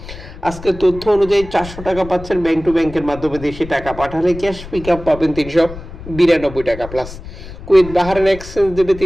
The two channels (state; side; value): noise; left; rumble, 13 dB below the sound